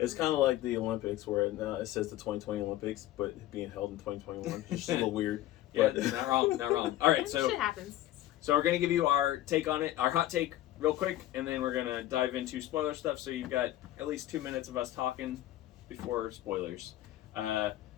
kind of like the Olympics, where it says the 2020 Olympics, but being held in 2021, just a little weird. Yeah, But- not wrong, not wrong. All right, so Shit happens. we're gonna give you our take on it, our hot take, real quick, and then we're gonna dive into spoiler stuff. So you've got at least 2 minutes of us talking before spoilers.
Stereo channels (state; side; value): quieter; right; 14.4 dB